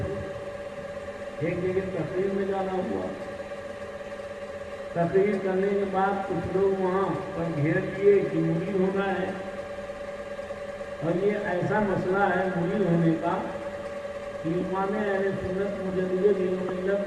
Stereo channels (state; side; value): identical; both; correlation 1.00